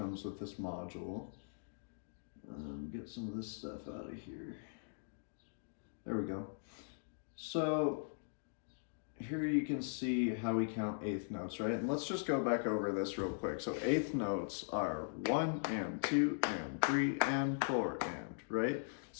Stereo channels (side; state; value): right; silent; digital silence